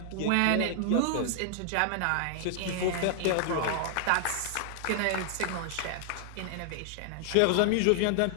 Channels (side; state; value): both; different; correlation 0.00